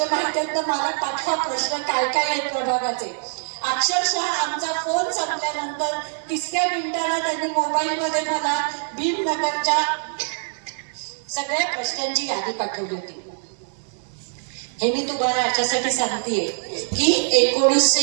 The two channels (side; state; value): left; silent; digital silence